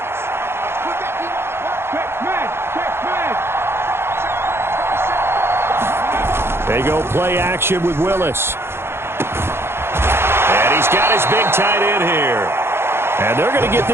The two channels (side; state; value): left; late; 0.12 ms